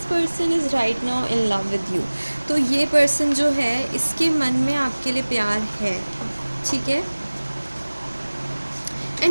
person is right now in love with you. तो ये पर्सन जो है इसके मन में आपके लिए प्यार है, ठीक है।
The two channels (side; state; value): both; inverted; correlation -1.00